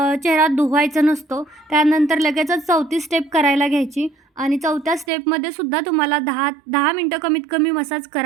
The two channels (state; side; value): drops out; left; at 5.1 s